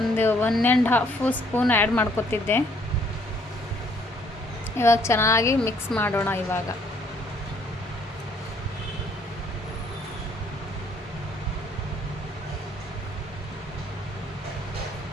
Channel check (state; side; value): normal; both; correlation 0.64